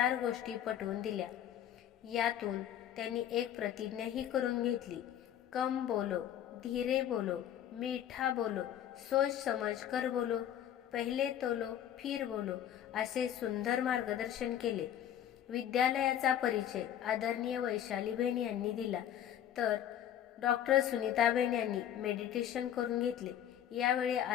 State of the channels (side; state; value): right; quieter; 10.5 dB